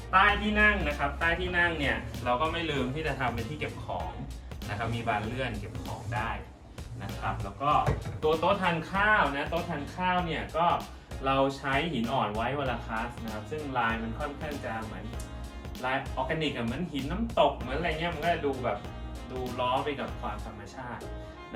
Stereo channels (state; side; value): identical; both; correlation 1.00